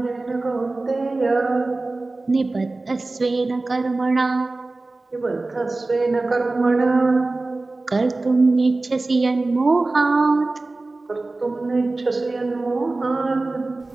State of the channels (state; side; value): quieter; left; 3.2 dB